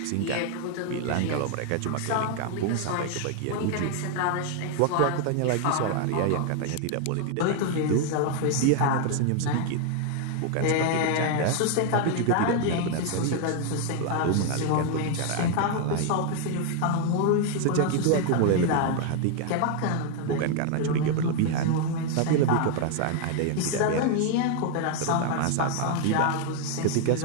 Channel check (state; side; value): different; both; correlation 0.00